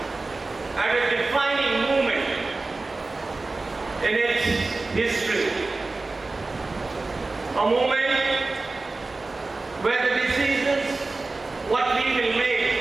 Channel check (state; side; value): quieter; left; 3.4 dB